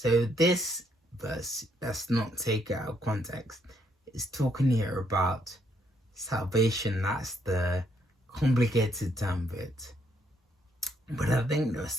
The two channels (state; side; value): normal; both; correlation 0.72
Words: this verse, let's not take it out of context. It's talking here about salvation. That's the complicated term of it. But I think there are